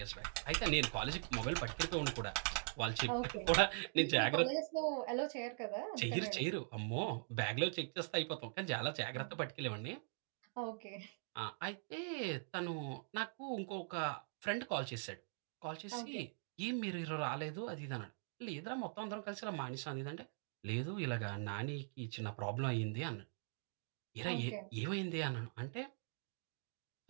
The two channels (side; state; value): left; silent; digital silence